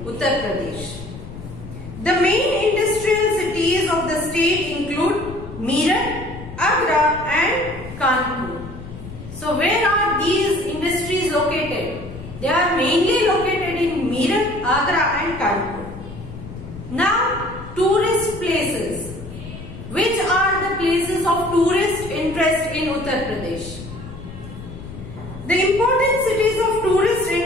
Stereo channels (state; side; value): noise; left; rumble, 13 dB below the sound